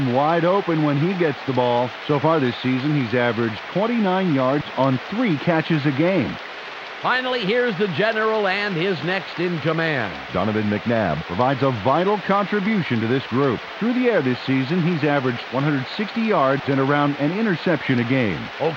wide open when he gets the ball. So far this season, he's averaged 29 yards on 3 catches a game. Finally, here's the general and his next in command. Donovan McNabb provides a vital contribution to this group. Through the air this season, he's averaged 160 yards and around an interception a game.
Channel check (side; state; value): both; identical; correlation 1.00